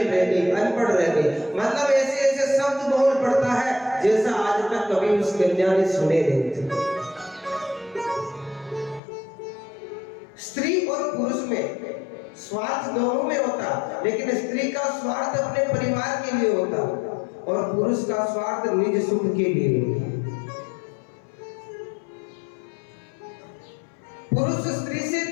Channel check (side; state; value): right; drops out; at 9.0 s